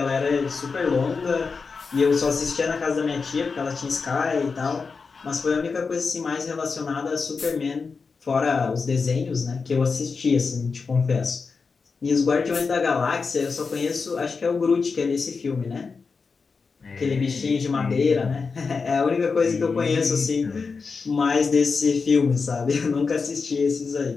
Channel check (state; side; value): quieter; right; 4.9 dB